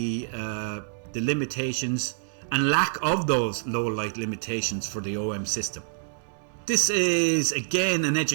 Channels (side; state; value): left; silent; digital silence